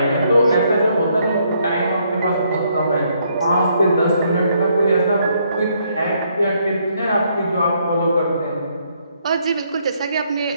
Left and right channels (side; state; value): both; inverted; correlation -0.72